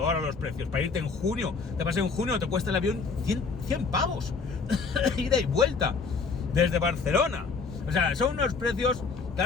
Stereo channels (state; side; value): quieter; right; 4.7 dB